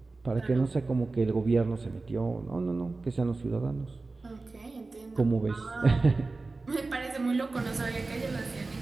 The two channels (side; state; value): left; quieter; 3.6 dB